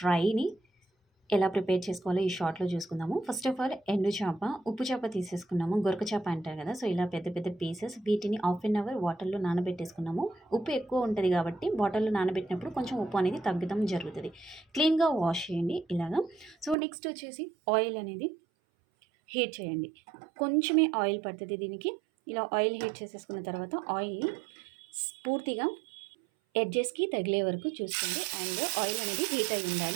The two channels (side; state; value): left; drops out; at 16.8 s